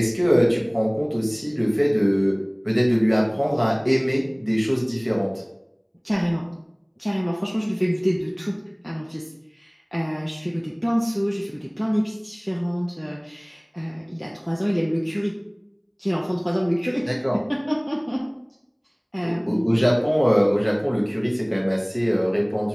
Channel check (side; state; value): both; identical; correlation 1.00